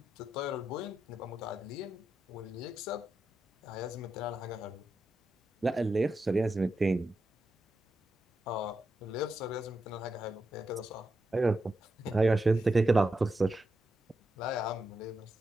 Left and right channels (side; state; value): both; normal; correlation 0.87